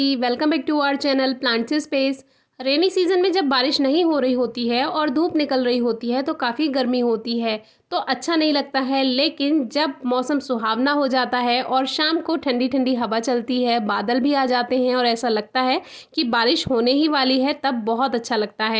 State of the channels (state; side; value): identical; both; correlation 1.00